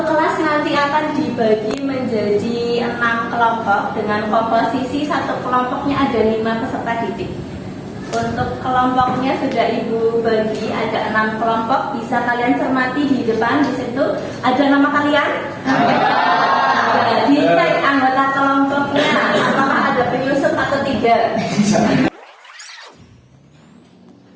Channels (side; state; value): both; identical; correlation 1.00